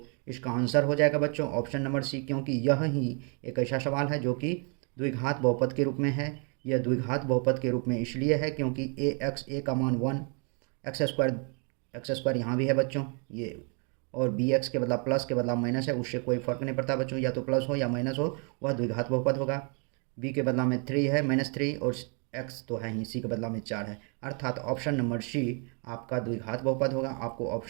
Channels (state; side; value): quieter; left; 37.1 dB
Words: इसका आंसर हो जाएगा बच्चों ऑप्शन नंबर सी, क्योंकि यह ही एक ऐसा सवाल है जो कि द्विघात बहुपद के रूप में है। यह द्विघात बहुपद के रूप में इसलिए है क्योंकि ए का मान 1, एक्स स्क्वायर यहाँ भी है बच्चों ये, और बी एक्स के बदला प्लस के बदला माइनस है, उससे कोई फ़र्क नहीं पड़ता बच्चों, या तो प्लस हो या माइनस हो वह द्विघात बहुपद होगा। बी के बदला में 3 है, -3, और एक्स तो है ही, सी के बदला में 4 है, अर्थात ऑप्शन नंबर सी आपका द्विघात बहुपद होगा। आपको